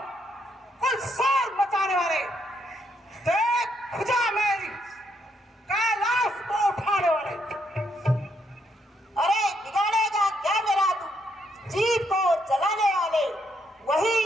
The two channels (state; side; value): normal; both; correlation 0.75